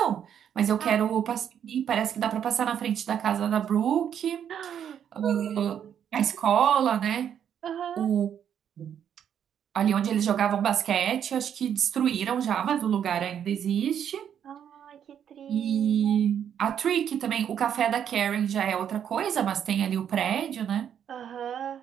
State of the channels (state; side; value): quieter; left; 8.9 dB